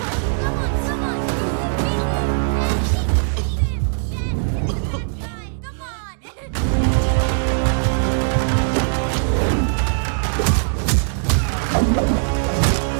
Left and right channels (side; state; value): left; silent; digital silence